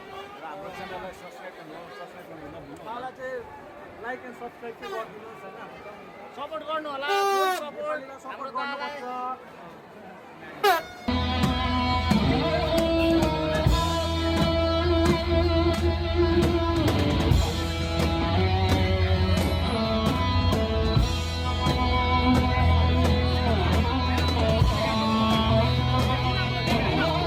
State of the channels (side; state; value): both; identical; correlation 1.00